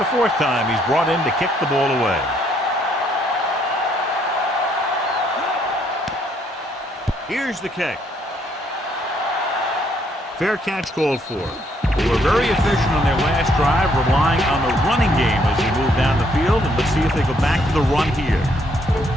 fourth time, he's brought in to kick the ball away. Here's the kick. Fair catch called for. They were very efficient on their last drive, relying on the running game as they move down the field. And let's see if they go back to the run here.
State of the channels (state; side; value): normal; both; correlation 0.69